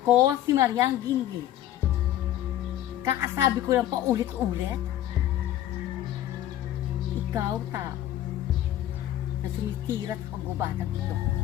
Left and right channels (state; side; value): quieter; right; 12.8 dB